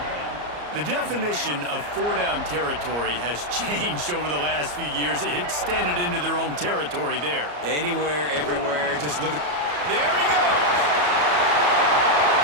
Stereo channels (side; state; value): left; late; 34 ms